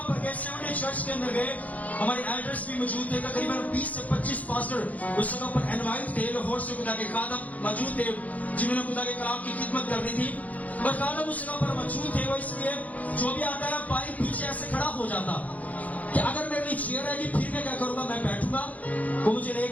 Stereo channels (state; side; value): late; right; 0.074 ms